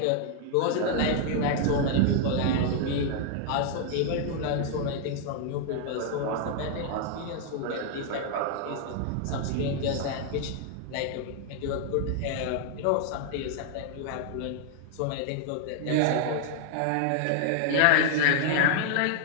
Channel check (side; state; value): both; different; correlation 0.00